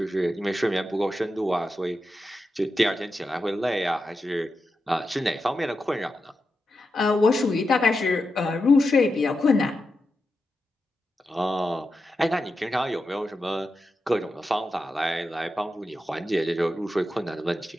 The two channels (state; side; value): normal; both; correlation 0.89